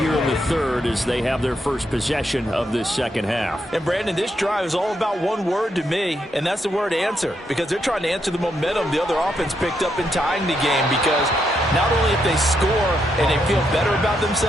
in the third as they have their first possession of this second half. And Brandon, this drive is all about one word to me, and that's the word answer, because they're trying to answer the momentum the other offense picked up in tying the game, because not only if they score and they feel better about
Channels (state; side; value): normal; both; correlation 0.79